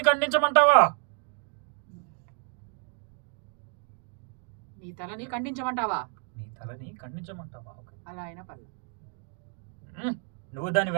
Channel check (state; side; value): quieter; left; 39.0 dB